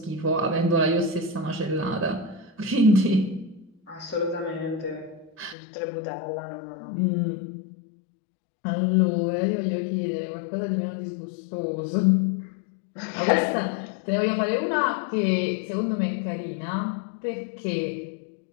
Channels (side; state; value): right; drops out; at 5.6 s